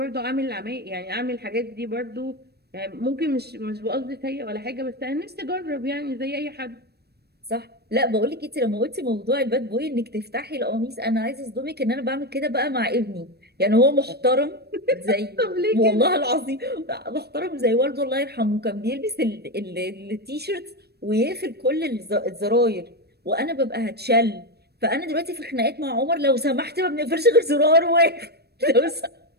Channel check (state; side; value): late; left; 0.47 ms